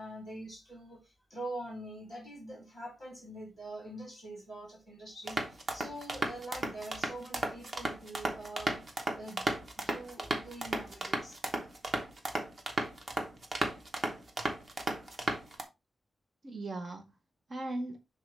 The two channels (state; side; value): normal; both; correlation 0.88